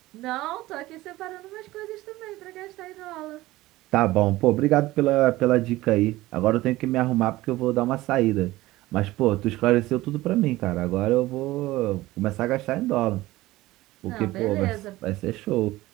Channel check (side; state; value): left; quieter; 17.8 dB